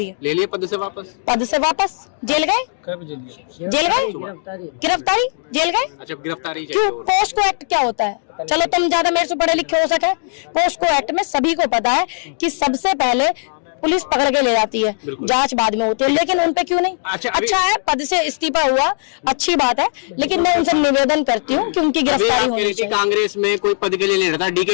ले लिए पद से वापस? जेल गए? जेल गए? गिरफ्तारी? जेल गए? अच्छा, गिरफ्तारी क्यों? पोस्को एक्ट क्या होता है? चलो तुम ज्यादा मेरे से पढ़े लिखे हो सके, पोस्को एक्ट में सभी को पता है कि सबसे पहले पुलिस पकड़ के ले जाती है, जांच बाद में होती है, लेकिन उनपे क्यों नहीं? अच्छा है, पद से इस्तीफा हुआ, अच्छी बात है, लेकिन मैं उनसे निवेदन करती हूँ कि उनकी गिरफ्तारी होनी चाहिए। कांग्रेस में कोई पद के लिए नहीं रहता,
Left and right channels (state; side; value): silent; right; digital silence